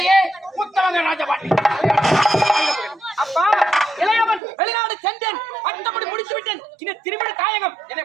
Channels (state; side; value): drops out; left; at 4.4 s